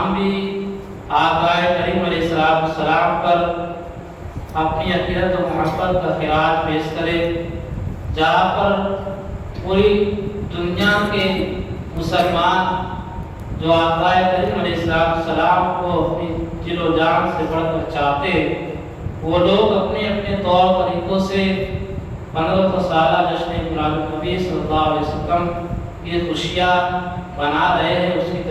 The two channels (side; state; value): both; identical; correlation 1.00